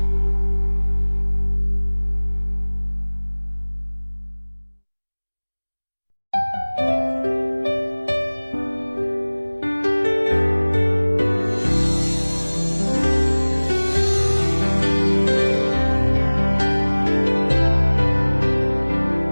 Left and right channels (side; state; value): both; inverted; correlation -1.00